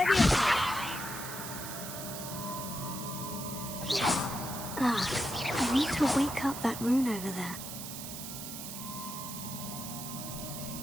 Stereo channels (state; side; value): noise; right; hiss, 8 dB below the sound